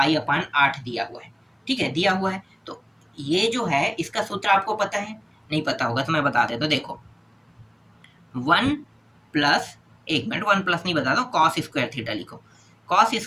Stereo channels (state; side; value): identical; both; correlation 1.00